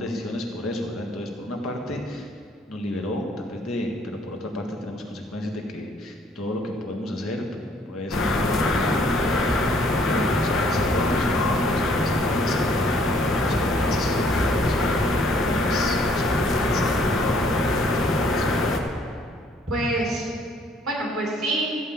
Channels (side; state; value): both; normal; correlation 0.62